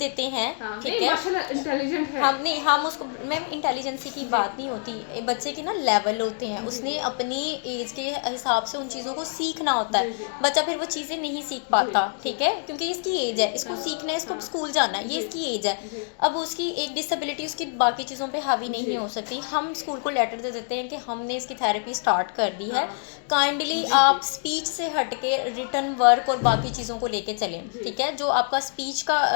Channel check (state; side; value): silent; right; 56 dB below the other